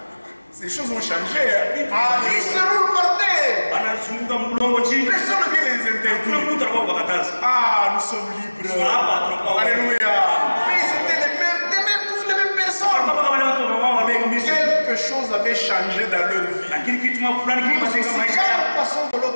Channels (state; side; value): inverted; both; correlation -1.00